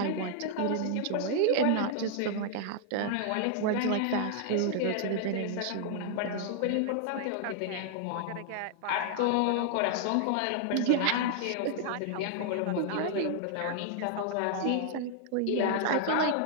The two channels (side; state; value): both; different; correlation 0.00